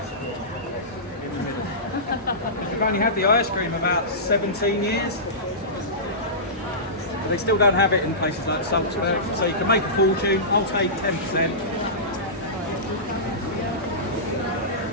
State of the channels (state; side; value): normal; both; correlation -0.19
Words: cream in the middle. We've only had the ice cream about 17 years. They still don't have it in places like Salzburg, so you can make a fortune. I'll take 10%.